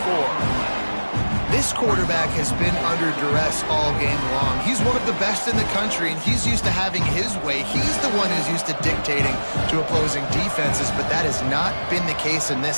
This quarterback has been under duress all game long. He's one of the best in the country, and he's used to having his way. He's the one who's used to dictating to opposing defenses, but that has not been the case in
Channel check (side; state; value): both; inverted; correlation -1.00